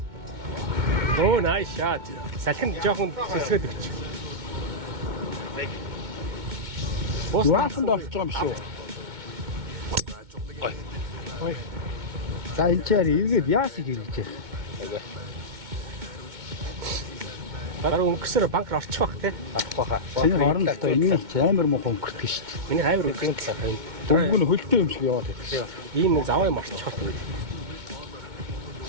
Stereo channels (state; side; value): late; left; 2.2 ms